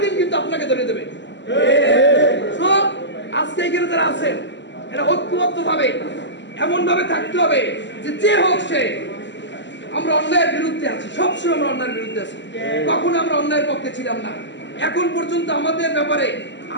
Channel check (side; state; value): right; late; 0.53 ms